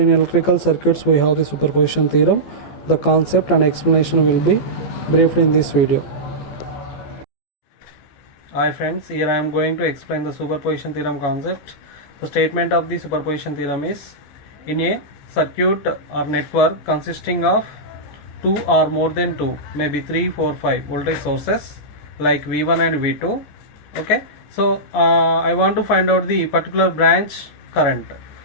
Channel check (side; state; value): right; late; 14 ms